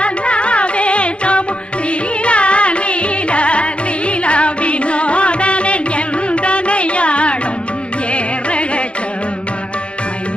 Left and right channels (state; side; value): late; right; 0.058 ms